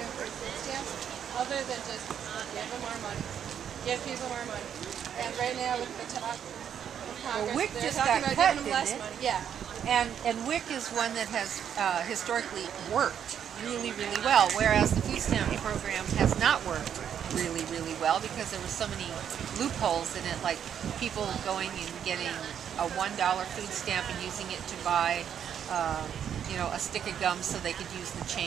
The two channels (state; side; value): quieter; left; 8.8 dB